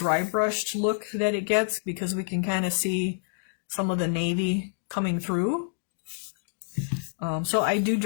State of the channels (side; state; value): right; silent; digital silence